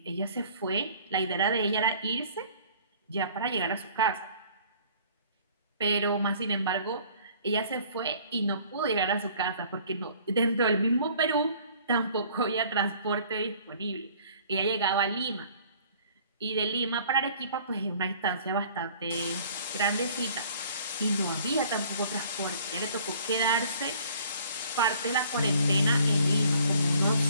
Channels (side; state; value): both; inverted; correlation -0.54